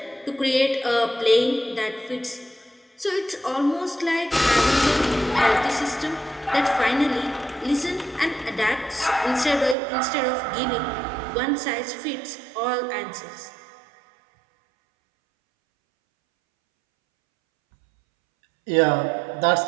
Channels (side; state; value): left; drops out; at 9.8 s